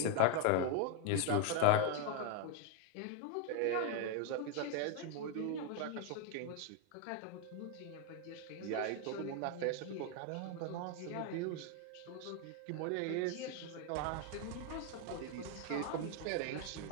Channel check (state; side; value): different; both; correlation 0.01